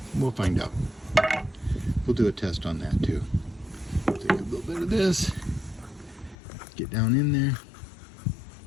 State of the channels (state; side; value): drops out; right; at 6.4 s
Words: We'll find out. We'll do a test on that too. Take a little bit of this, get down in there.